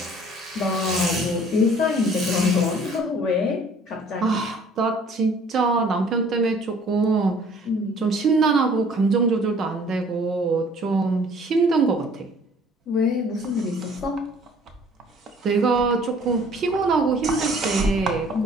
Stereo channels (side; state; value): both; normal; correlation 0.54